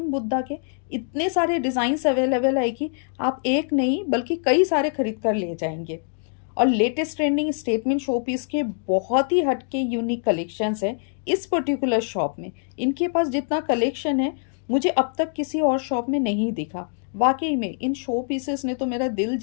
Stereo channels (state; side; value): silent; right; 61 dB below the other